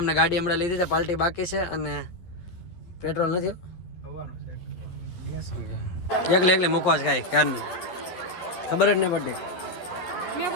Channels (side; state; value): right; late; 11 ms